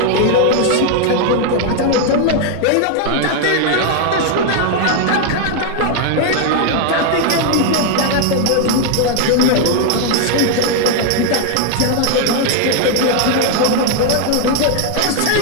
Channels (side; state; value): both; different; correlation 0.00